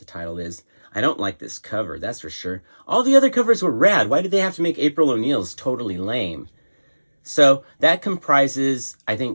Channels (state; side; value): inverted; both; correlation -1.00